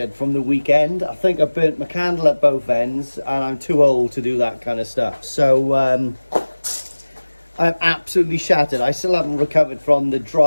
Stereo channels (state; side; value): inverted; both; correlation -1.00